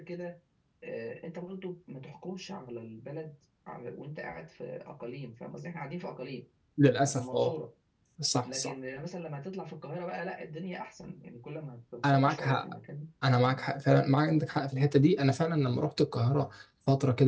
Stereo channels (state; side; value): identical; both; correlation 1.00